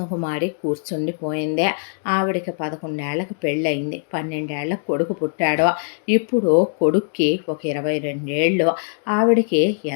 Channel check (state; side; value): silent; right; digital silence